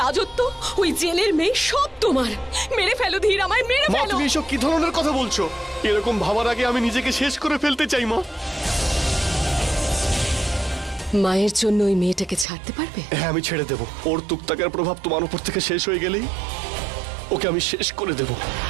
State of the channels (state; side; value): drops out; left; at 12.5 s